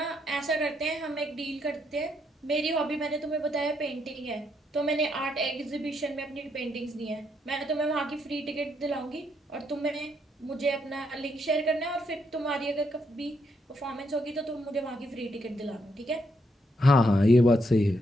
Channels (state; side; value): normal; both; correlation 0.76